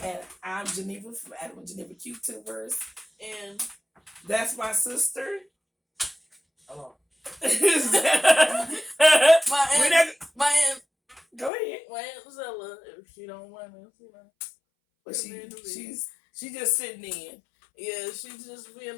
I'm Geneva from Adam and Geneva QTubers. And that's my sister. Oh. my aunt. Go ahead. My aunt Zella, if she don't want us, you know. But she's just sitting in. Yeah, she's just being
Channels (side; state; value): right; drops out; at 11.5 s